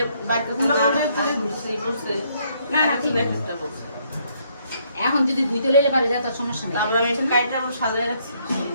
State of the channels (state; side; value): inverted; both; correlation -0.70